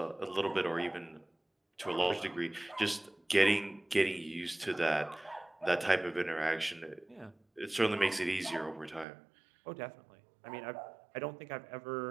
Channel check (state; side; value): drops out; left; at 9.1 s